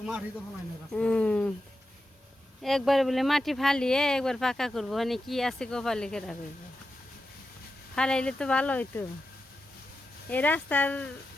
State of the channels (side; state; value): both; normal; correlation 0.90